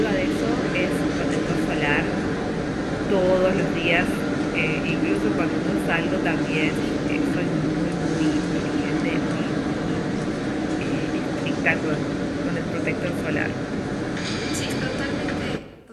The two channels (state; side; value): identical; both; correlation 1.00